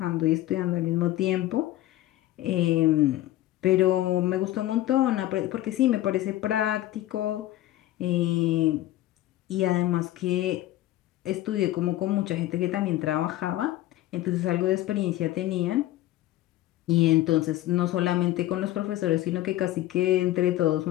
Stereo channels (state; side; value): quieter; right; 15.0 dB